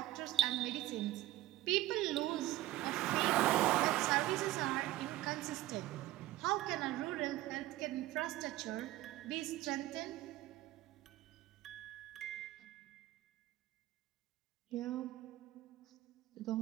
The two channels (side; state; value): left; quieter; 15.6 dB